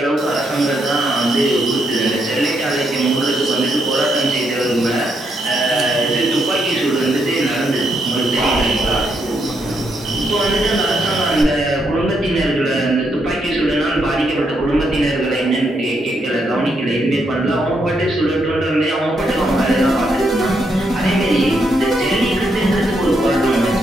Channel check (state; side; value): normal; both; correlation 0.78